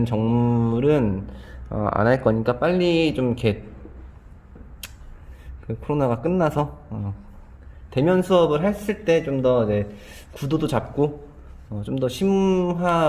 정물은 안 할 거니까 빨리 좀 이렇게 그 코로나가 끝나서 대면 수업을 했을 때 좀 더 구도도 잡고 좀 더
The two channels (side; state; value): both; identical; correlation 1.00